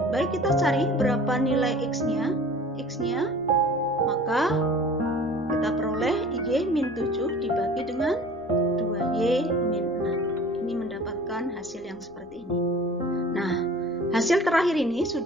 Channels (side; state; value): both; normal; correlation 0.44